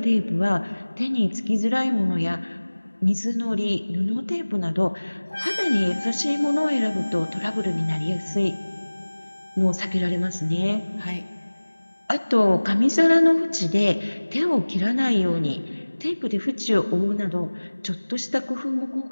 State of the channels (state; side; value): inverted; both; correlation -1.00